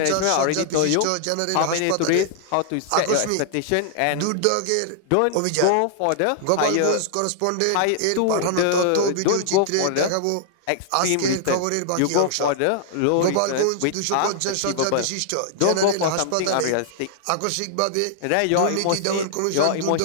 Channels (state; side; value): different; both; correlation -0.01